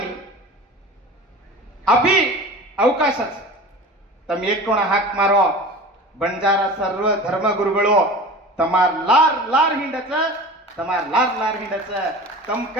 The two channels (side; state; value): both; normal; correlation 0.36